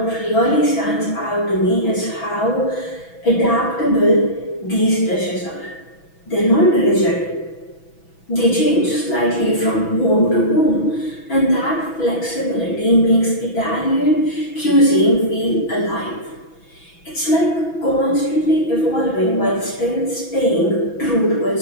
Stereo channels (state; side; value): late; right; 6.1 ms